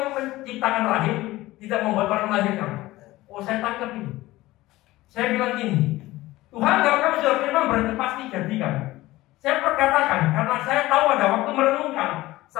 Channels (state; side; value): quieter; right; 17.9 dB